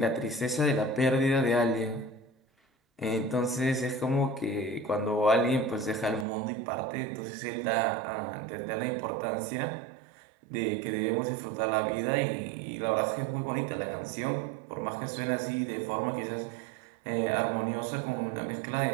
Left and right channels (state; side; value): drops out; left; at 6.2 s